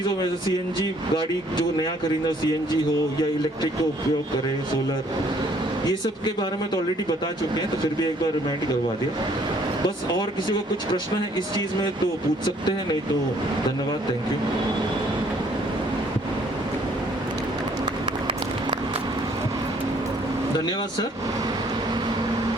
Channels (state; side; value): normal; both; correlation 0.62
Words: में सीएनजी गाड़ी जो नया खरीदना सीएनजी हो या इलेक्ट्रिक का उपयोग करें, सोलर, ये सब के बारे में तो ऑलरेडी बता चुके हैं, तो फिर भी एक बार रिमाइंड करवा दिया। बस और किसी को कुछ प्रश्न है इस चीज़ में तो पूछ सकते हैं, नहीं तो धन्यवाद, थैंक यू। धन्यवाद सर।